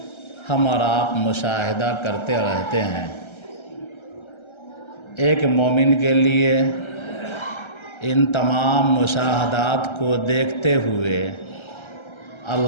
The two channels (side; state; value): right; late; 1.3 ms